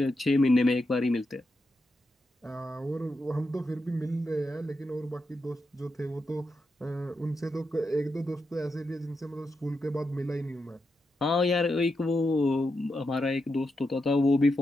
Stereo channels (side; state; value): both; normal; correlation 0.86